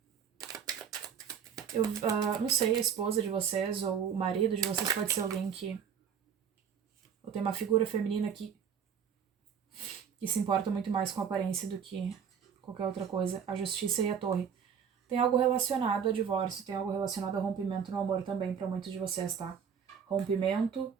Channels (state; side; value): quieter; left; 7.6 dB